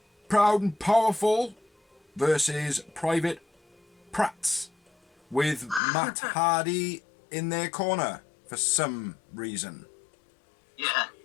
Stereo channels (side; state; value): right; drops out; at 5.8 s